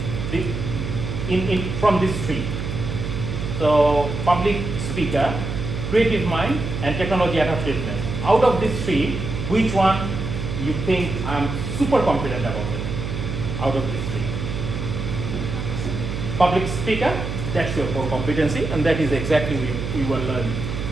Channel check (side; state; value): right; noise; hum, 4 dB below the sound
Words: from these 3. So public speaker, creative mind, and technology adaptiveness. Out of these 3, which one you think I'm super confident about it? Out of these 3. Public speaker, that's your core competency, and that is exactly we will learn.